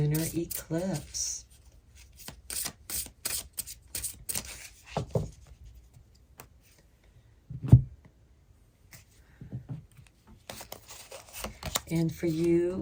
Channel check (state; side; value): identical; both; correlation 1.00